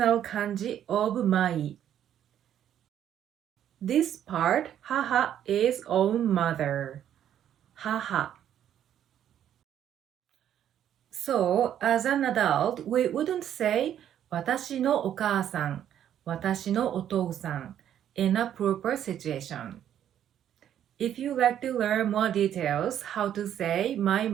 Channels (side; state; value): left; quieter; 10.3 dB